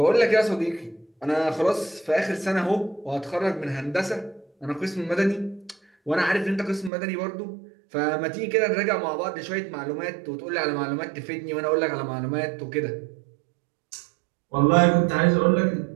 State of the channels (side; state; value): left; drops out; at 6.9 s